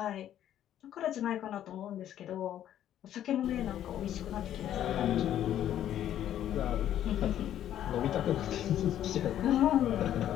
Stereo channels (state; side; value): quieter; right; 11.3 dB